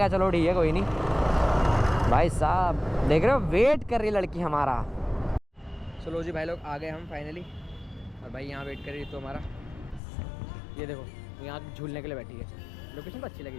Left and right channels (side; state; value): right; drops out; at 10.0 s